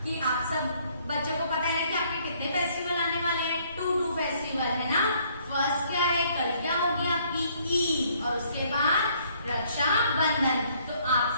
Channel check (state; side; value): inverted; both; correlation -0.64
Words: कि आप सब बच्चों को पता है ना कि आपके कितने फेस्टिवल आने वाले हैं। 2 फेस्टिवल है ना। फर्स्ट क्या है, कल क्या होगी आपकी ईद, और उसके बाद रक्षा बंधन। तो आप